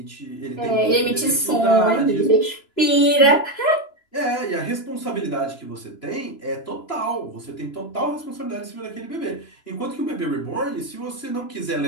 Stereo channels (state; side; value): late; right; 3.0 ms